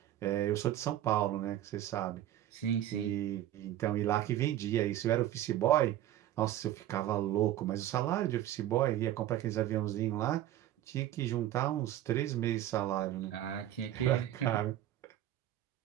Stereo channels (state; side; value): quieter; left; 12.8 dB